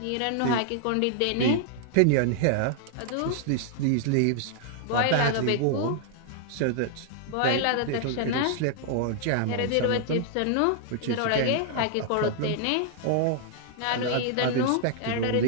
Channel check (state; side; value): different; both; correlation -0.01